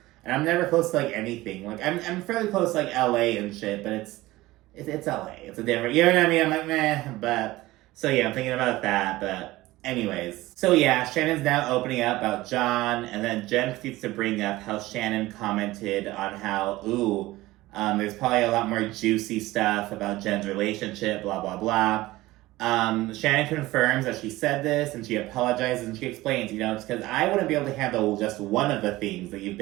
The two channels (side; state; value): left; quieter; 18.2 dB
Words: and I'm never close to anything. I'm fairly close to LA and shit, but it's LA. It's a different, you know what I mean? I'm like, meh, but, so yeah, I'm thinking about that, but anyways. So yeah, Shannon's now opening up about John, and then Jen proceeds to bring up how Shannon commented on how, there's probably a lot more juicy stuff about Jen's relationship, blah, blah, blah. Shannon confirms that she said this, and she apologizes, and she explains, it's because I wouldn't be able to handle just one of the things that you've